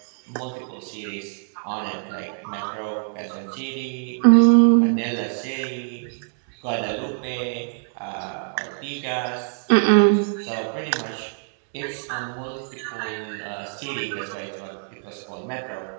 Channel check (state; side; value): silent; left; 62 dB below the other